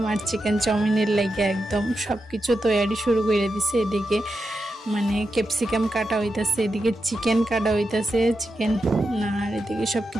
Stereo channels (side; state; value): both; normal; correlation 0.88